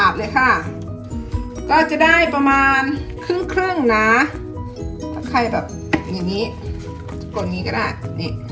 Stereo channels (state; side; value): identical; both; correlation 1.00